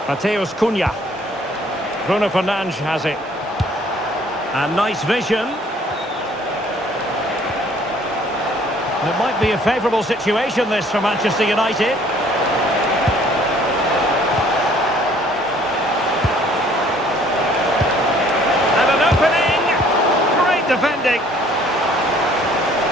Mateus Cunha. Bruno Fernandes has it. And nice vision. It might be a favourable situation, this, for Manchester United. And an opening! Great defending!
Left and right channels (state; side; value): normal; both; correlation 0.58